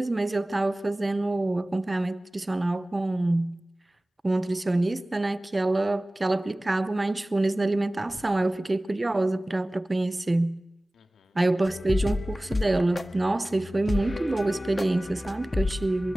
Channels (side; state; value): both; normal; correlation 0.98